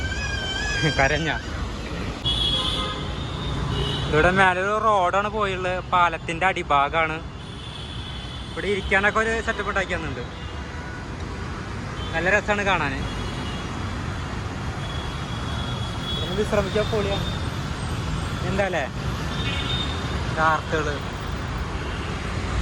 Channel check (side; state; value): both; identical; correlation 1.00